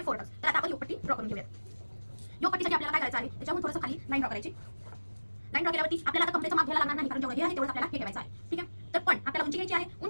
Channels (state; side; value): inverted; both; correlation -1.00